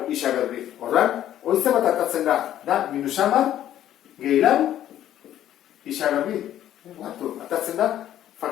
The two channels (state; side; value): quieter; right; 11.8 dB